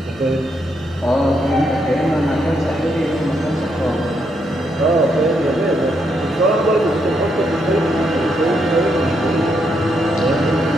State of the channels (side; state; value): both; normal; correlation 0.78